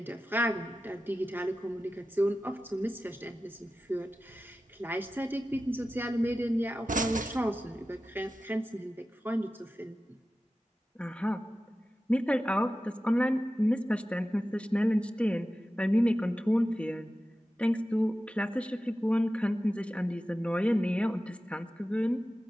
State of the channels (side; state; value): both; normal; correlation 0.94